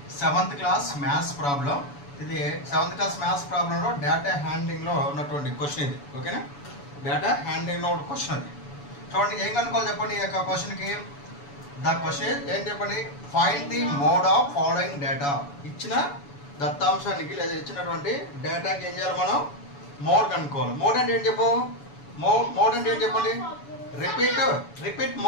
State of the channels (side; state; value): right; late; 7.0 ms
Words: 7th class maths problem. ఇది 7th క్లాస్ మ్యాథ్స్ ప్రాబ్లంలో డేటా హ్యాండ్లింగ్ లో ఉన్నటువంటి క్వశ్చన్ ఇది. ఓకేనా, డేటా హ్యాండ్లింగ్ లో ఉన్న క్వశ్చన్ అది. చూడండి ఏం కనుక్కోవాలి చెప్పండి. ఈ యొక్క క్వశ్చన్ కి ద క్వశ్చన్ ఏం చెప్పండి, find the mode of following data. ఇచ్చిన దత్తాంశానికి లేదా ఇచ్చినటువంటి డేటాకి ఏం చేయాలి మనం, మోడ్ కనుక్కోవాలి. మోడ్ అంటే ఏం చెప్పు, మోడ్ అంటే ఏం చెప్పండి, repeat